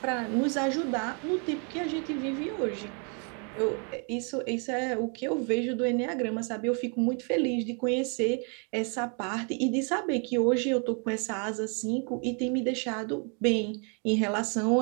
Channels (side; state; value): left; quieter; 38.1 dB